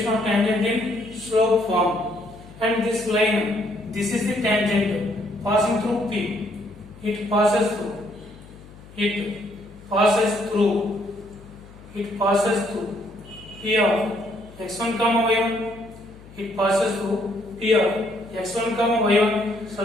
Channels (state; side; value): noise; left; hum, 20 dB below the sound